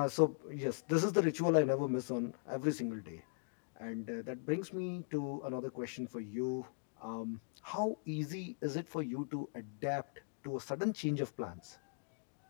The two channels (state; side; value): silent; right; digital silence